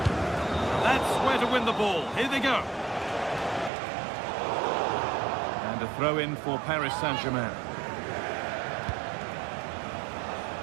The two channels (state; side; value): drops out; left; at 3.7 s